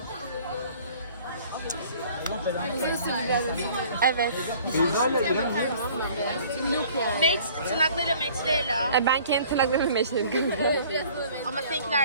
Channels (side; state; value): both; inverted; correlation -0.52